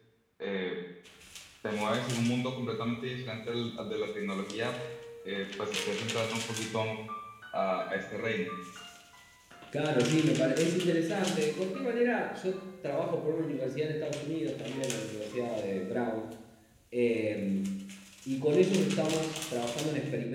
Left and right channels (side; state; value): both; identical; correlation 1.00